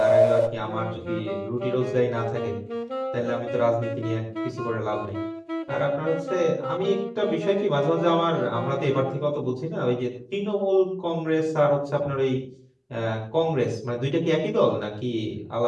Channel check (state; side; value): identical; both; correlation 1.00